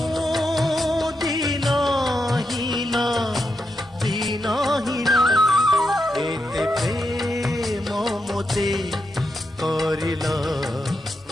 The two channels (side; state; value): both; normal; correlation 0.85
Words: दीनहीन दीनहीन, एते प्रेम मोते करिल